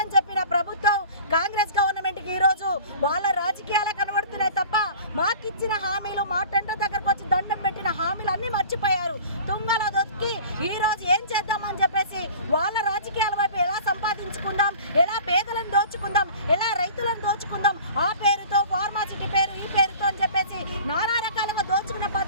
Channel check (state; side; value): inverted; both; correlation -0.42